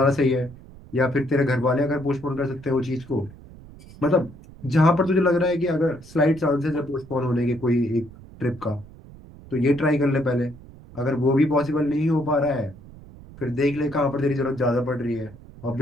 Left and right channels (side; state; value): right; noise; rumble, 19 dB below the sound